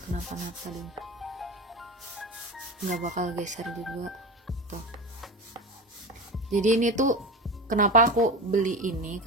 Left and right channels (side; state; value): both; normal; correlation 0.27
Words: kenapa-napa deh, nggak bakal geser juga tuh. Jadi ini tuh kenapa aku beli ini,